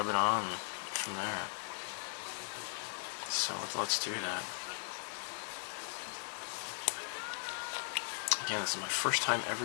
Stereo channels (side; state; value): right; silent; digital silence